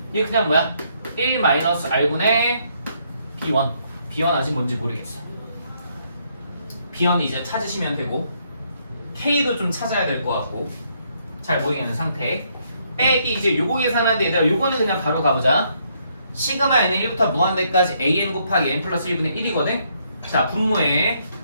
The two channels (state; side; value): inverted; both; correlation -0.72